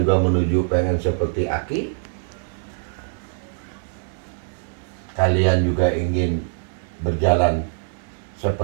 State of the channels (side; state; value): left; silent; 62 dB below the other